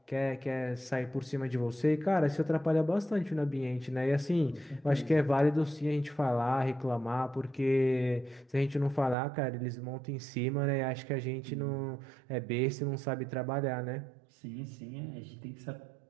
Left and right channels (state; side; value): drops out; left; at 9.2 s